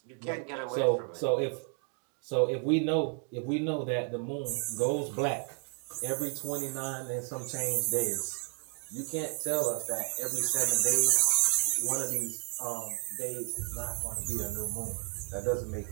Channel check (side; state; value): left; quieter; 39.6 dB